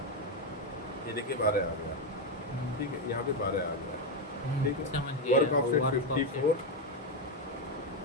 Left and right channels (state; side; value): normal; both; correlation 0.07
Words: ये देखिए 12 आ गया, ठीक है। यहाँ पे 12 आ गया, ठीक है। वर्क ऑफसेट 54,